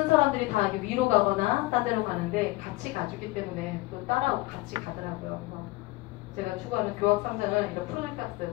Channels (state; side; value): quieter; right; 20.5 dB